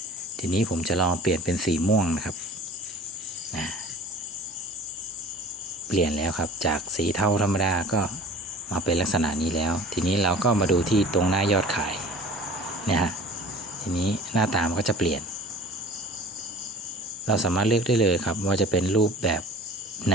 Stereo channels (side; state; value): both; normal; correlation 0.43